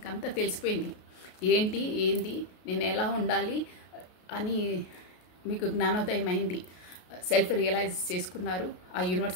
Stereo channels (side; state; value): right; late; 33 ms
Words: అంతా తెలిసిపోయింది ఏంది నేను ఎలా ఉండాలి అని మీకు జ్ఞానోదయం అయింది. సెల్ఫ్ రియలైజ్ చేసుకున్నారు ఆ